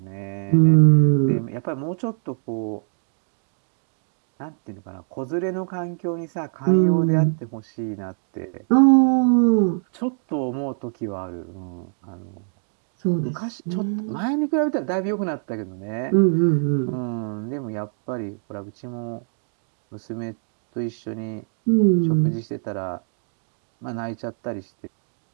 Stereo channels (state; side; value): silent; left; digital silence